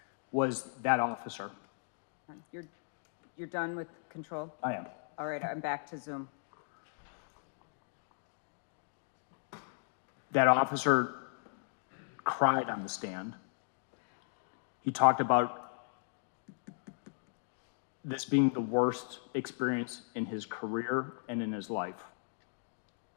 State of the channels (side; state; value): right; silent; digital silence